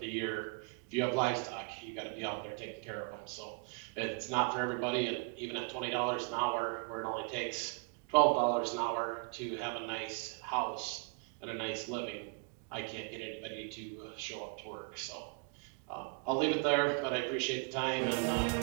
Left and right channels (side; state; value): left; quieter; 35.0 dB